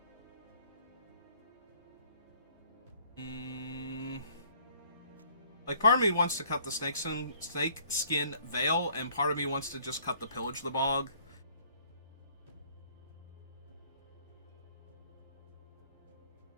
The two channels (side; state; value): both; inverted; correlation -0.59